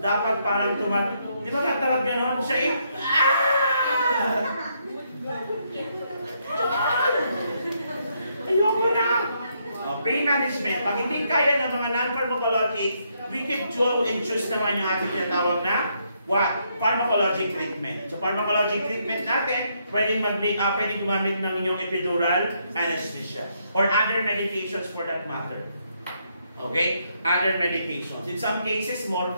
parang di ba katawag gano'n? Siya ayoko na! Pain management, pag hindi kaya ng mga non-pharmacologic, we can choose naman yung ating tinatawag na pharmacologic treatment. So, pharmacologic treatment natin, pwedeng gumamit ng inyong epidural anesthesia or other medications for that matter. Okay? Other medications. In some cases,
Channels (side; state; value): both; inverted; correlation -0.75